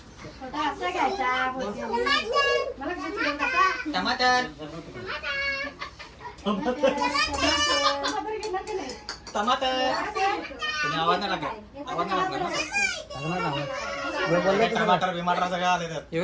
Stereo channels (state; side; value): identical; both; correlation 1.00